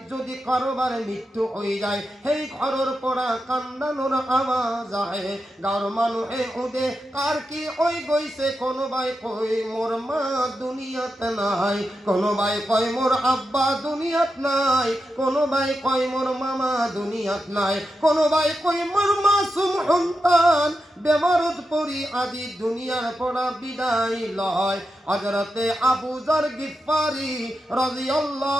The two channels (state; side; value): normal; both; correlation 0.88